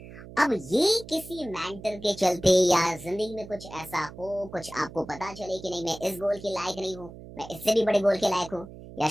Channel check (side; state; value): right; noise; hum, 16 dB below the sound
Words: अब ये किसी मेंटर के चलते या जिंदगी में कुछ ऐसा हो, कुछ आपको पता चले कि नहीं मैं इस गोल के लायक नहीं हूँ, मैं इससे भी बड़े गोल के लायक हूँ, या